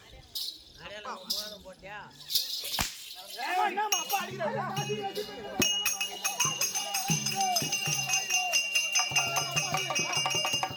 போட்டியா என்னம்மா அப்பா அடிக்கிறாரு?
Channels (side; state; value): both; identical; correlation 1.00